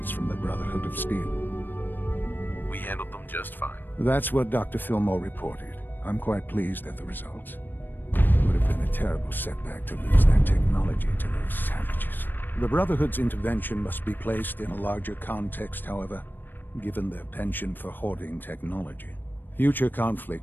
from the Brotherhood of Steel. We handled them just fine. That's what Dr. Fillmore reported. I'm quite pleased at the results. It would have been a terrible setback to lose that technology to those savages. The Brotherhood's intervention must be placed in a larger context, however, given their penchant for hoarding technology. Future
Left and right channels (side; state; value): right; late; 0.093 ms